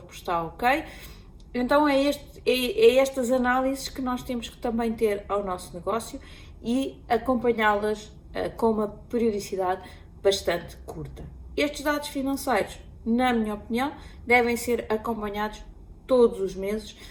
está ok. Então é estas análises que nós temos que também ter ao nosso negócio e acompanhá-las com uma periodicidade bastante curta. Estes dados financeiros, na minha opinião, devem ser acompanhados todos os meses,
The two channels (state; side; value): identical; both; correlation 1.00